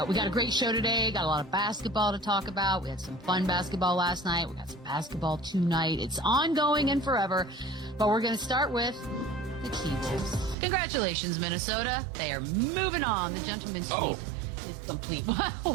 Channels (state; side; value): drops out; left; at 10.6 s